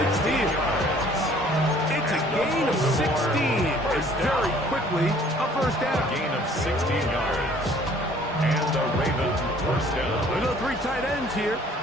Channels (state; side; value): normal; both; correlation 0.56